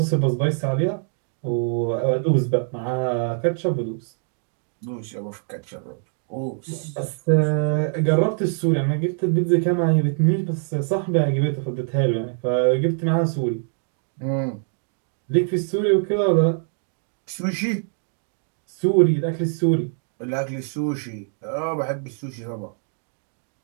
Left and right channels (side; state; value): left; silent; 59 dB below the other